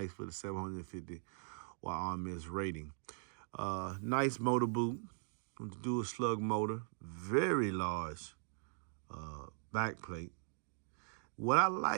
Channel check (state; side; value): silent; left; digital silence